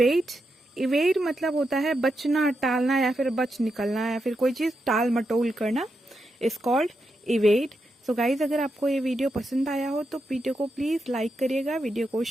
इवेट मतलब होता है बचना, टालना या फिर बच निकलना या फिर कोई चीज टाल मटोल करना, इज कॉल्ड इवेट। सो गाइज, अगर आपको ये वीडियो पसंद आया हो तो वीडियो को प्लीज लाइक करिएगा, वीडियो को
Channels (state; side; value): normal; both; correlation 0.85